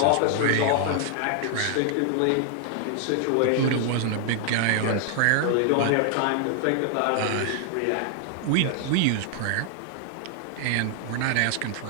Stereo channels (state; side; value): different; both; correlation 0.00